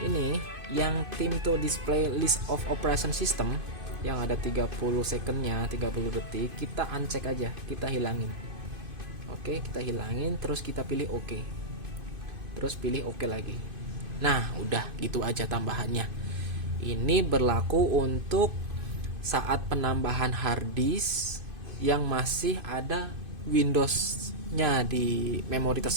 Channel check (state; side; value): late; left; 2.5 ms